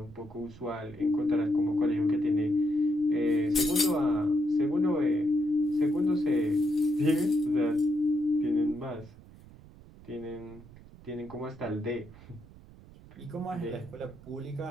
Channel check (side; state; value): right; noise; rumble, 21 dB below the sound